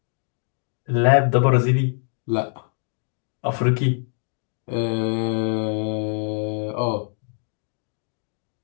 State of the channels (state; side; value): silent; right; 57 dB below the other